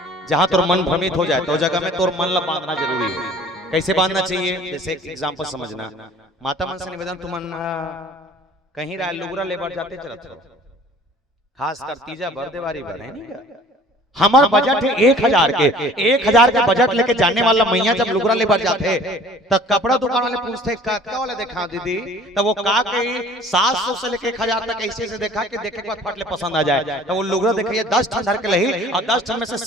जहां तोर मन भ्रमित हो जाए तो जगह में तोर मन ला बांधना जरूरी है। कैसे बांधना चाहिए जैसे एक एग्जांपल समझना माता मन से निवेदन तुमन कहीं राय लुगरा लेबर जाते चलत खास कर तीजा बरदेवारी बने नहीं हमार बजट है 1000 के बजट लेके जाने वाला मैया जब लुगरा लेबर जाते तब कपड़ा दुकान वाले पूछते का वाला देखा दीदी तब वो का कही 700 से लेके 1000 तक ऐसे से देखा कि देखे के बाद फट ले पसंद आ जाए तो वो लुगरा देखिए 10 ठन धर के लही और 10 ठन में से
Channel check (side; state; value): both; normal; correlation 0.50